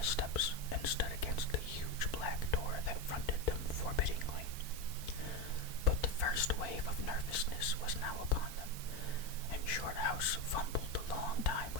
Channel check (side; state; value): right; late; 3.5 ms